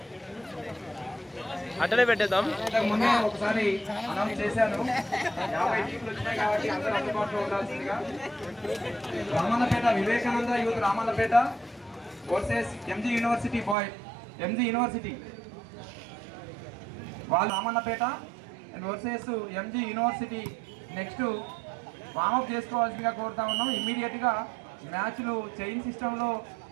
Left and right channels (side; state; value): left; drops out; at 13.8 s